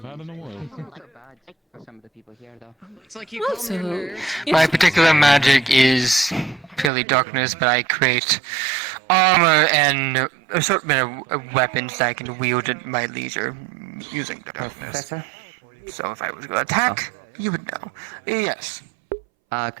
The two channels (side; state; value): left; drops out; at 6.9 s